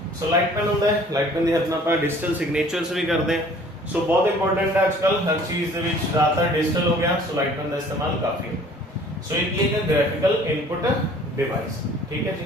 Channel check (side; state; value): both; normal; correlation 0.52